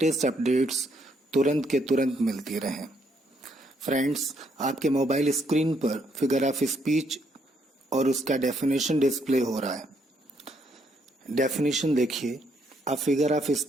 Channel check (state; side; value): normal; both; correlation 0.72